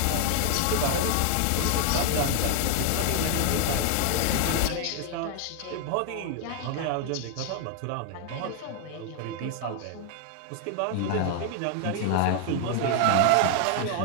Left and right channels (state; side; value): different; both; correlation 0.00